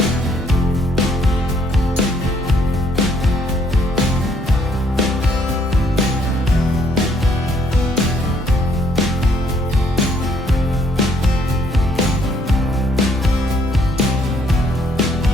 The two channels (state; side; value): normal; both; correlation 0.67